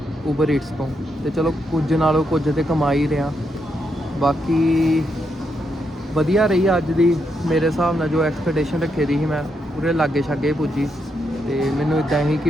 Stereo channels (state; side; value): normal; both; correlation 0.80